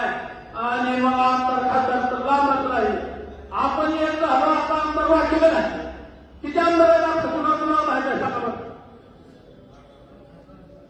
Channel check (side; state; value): both; identical; correlation 1.00